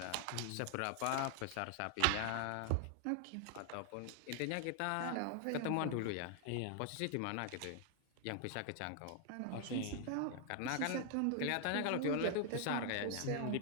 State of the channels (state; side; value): different; both; correlation 0.00